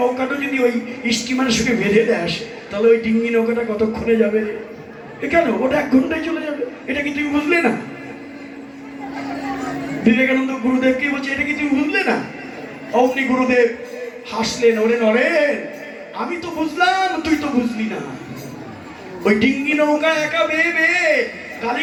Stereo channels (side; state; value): both; identical; correlation 1.00